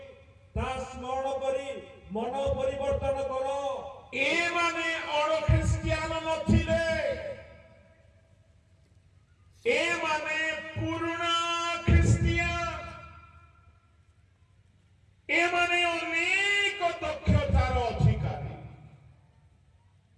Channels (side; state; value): both; identical; correlation 1.00